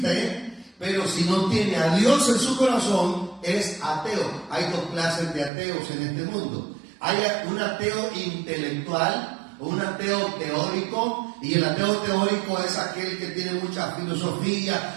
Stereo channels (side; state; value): left; drops out; at 5.5 s